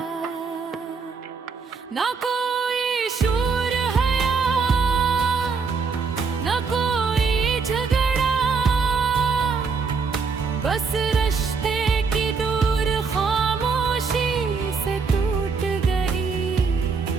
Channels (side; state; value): left; quieter; 5.1 dB